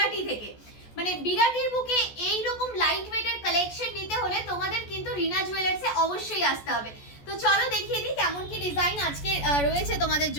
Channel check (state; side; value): late; right; 14 ms